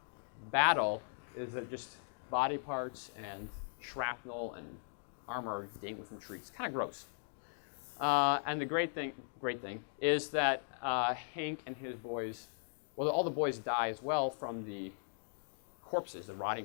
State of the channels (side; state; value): right; silent; digital silence